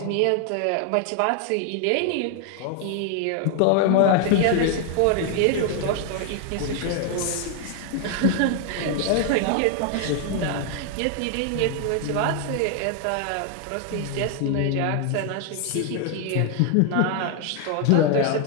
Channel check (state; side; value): different; both; correlation 0.00